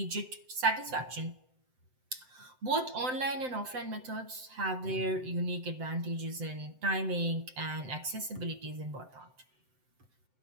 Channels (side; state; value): left; late; 7.8 ms